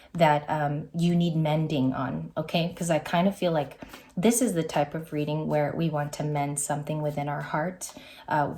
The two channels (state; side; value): identical; both; correlation 1.00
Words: that you need mending on, okay? Because I kind of feel like this is the type of reading where we want to mend something within our heart.